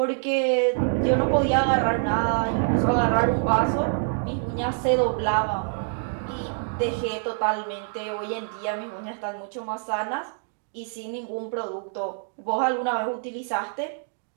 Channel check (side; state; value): left; silent; digital silence